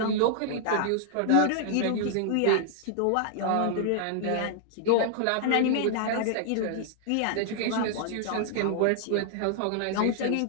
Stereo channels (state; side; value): different; both; correlation -0.01